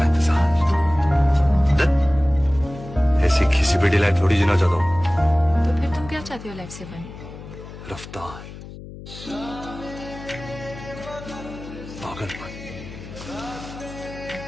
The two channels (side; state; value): left; noise; hum, 14 dB below the sound